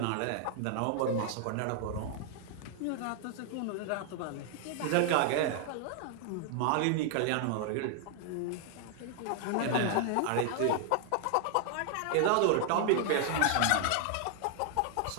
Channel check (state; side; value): different; both; correlation 0.00